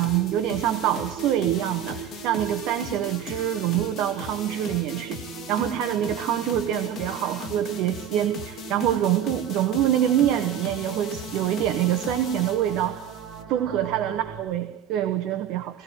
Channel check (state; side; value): quieter; left; 9.6 dB